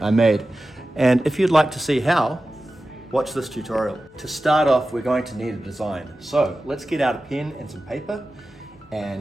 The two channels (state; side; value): noise; left; hum, 30 dB below the sound